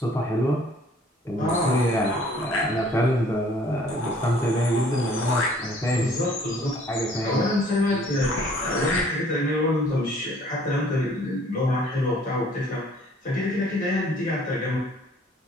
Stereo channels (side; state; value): both; normal; correlation 0.57